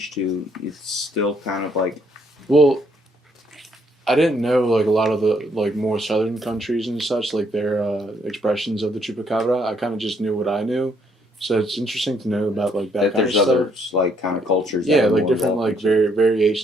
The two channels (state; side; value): normal; both; correlation 0.70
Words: to it's still kind of like? Well, I didn't know like a lot of the like more southern countries and such, like their expressions of the chupacabra. I kind of just knew what I knew, so it's interesting to know about like that kind there's of stuff. other like kind of cultures. Yeah, that like different like